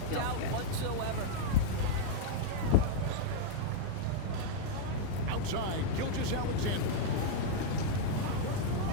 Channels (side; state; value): both; different; correlation -0.01